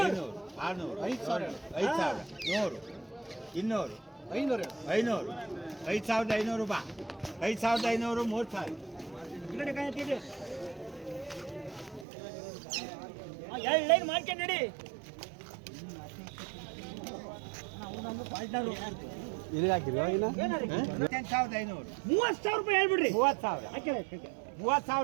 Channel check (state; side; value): drops out; left; at 12.1 s